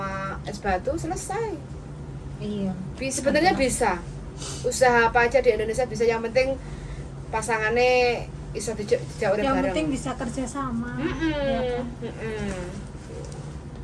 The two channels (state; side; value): identical; both; correlation 1.00